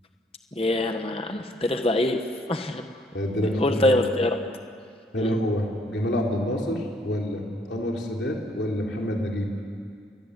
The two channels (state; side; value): normal; both; correlation 0.66